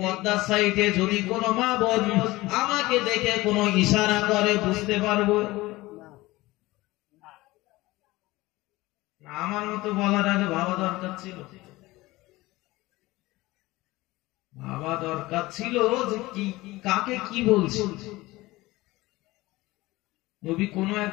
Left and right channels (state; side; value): quieter; right; 19.6 dB